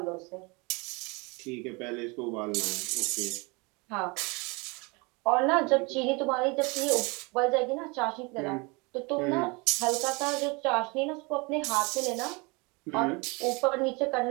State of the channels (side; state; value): left; quieter; 28.2 dB